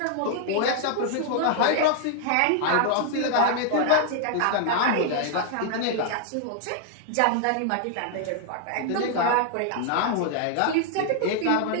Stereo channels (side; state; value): both; different; correlation 0.00